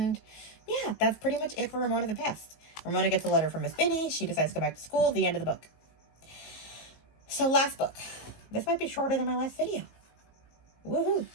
yeah, that's pretty much it for Ramona the Pest. Ramona gets a letter from Miss Binny. She decides to go back to school. The end of the book. So last book. This might be shorter than my last video. Woohoo!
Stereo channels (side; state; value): right; late; 19 ms